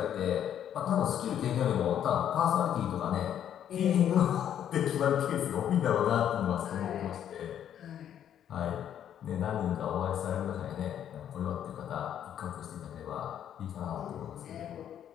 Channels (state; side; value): quieter; right; 9.9 dB